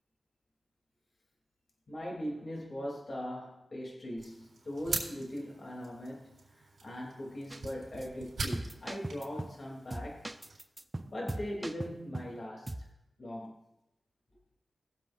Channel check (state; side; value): normal; both; correlation 0.95